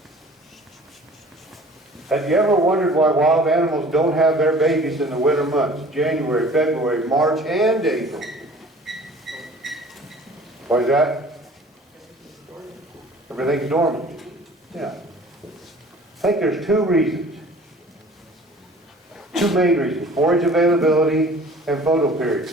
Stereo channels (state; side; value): normal; both; correlation 0.47